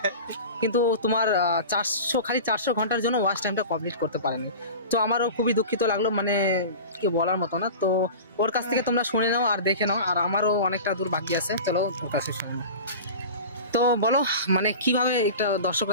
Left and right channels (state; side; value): inverted; both; correlation -0.34